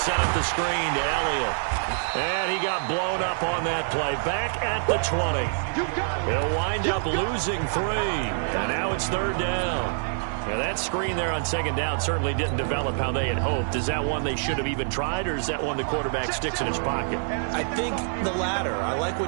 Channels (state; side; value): silent; left; 61 dB below the other